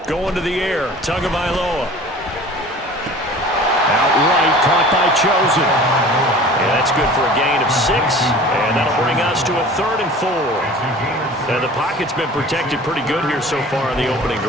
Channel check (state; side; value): normal; both; correlation 0.43